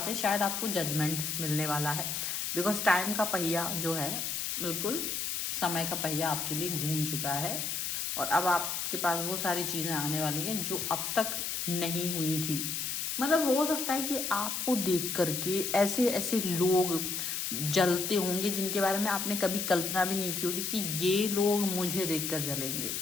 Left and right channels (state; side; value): noise; left; hiss, 2 dB below the sound